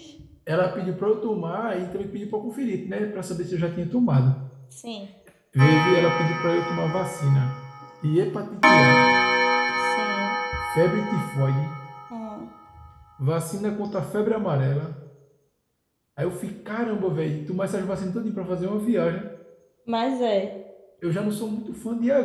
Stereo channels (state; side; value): identical; both; correlation 1.00